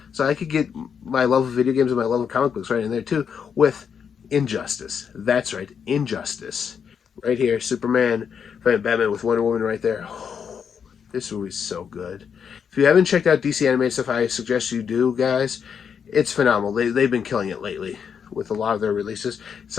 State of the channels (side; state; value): right; quieter; 7.1 dB